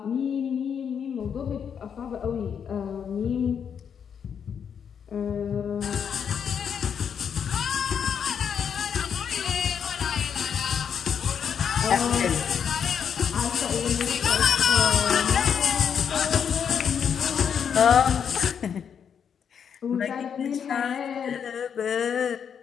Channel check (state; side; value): quieter; right; 7.6 dB